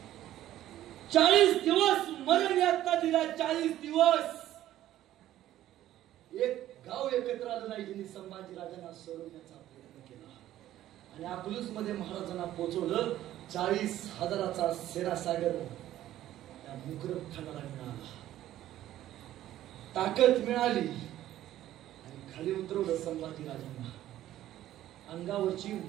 40 दिवस मरण यातना दिला. 40 दिवस एक गाव एकत्र आलं नाही. ज्यांनी संभाजीराजांना सोडवण्याचा प्रयत्न केला. आणि अकलूज मध्ये महाराजांना पोहोचवलं. 40,000चा सेनासागर त्या मुकरब खानाला मिळाला. ताकद मिळाली आणि खाली उतरवलं संभाजी राजांना. अंगावरची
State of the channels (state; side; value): quieter; left; 13.3 dB